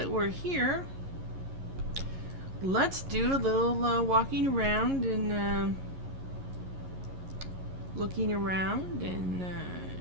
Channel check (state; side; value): late; left; 11 ms